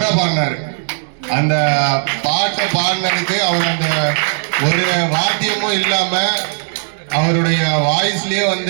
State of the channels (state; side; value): silent; left; 66 dB below the other